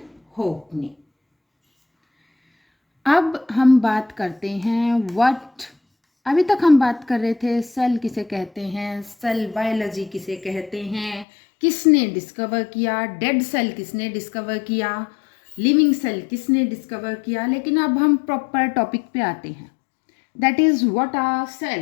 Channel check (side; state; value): right; drops out; at 11.2 s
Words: ने। अब हम बात करते हैं अभी तक हम बात कर रहे थे सेल किसे कहते हैं, सेल बायोलॉजी किसे कहते हैं, किसने डिस्कवर किया, डेड सेल किसने डिस्कवर किया, लिविंग सेल किसने डिस्कवर किया। लेकिन अब हम प्रॉपर टॉपिक पे आते हैं, that is what are